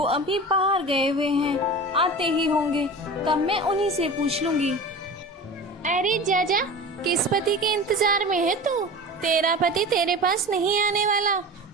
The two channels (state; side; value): normal; both; correlation 0.34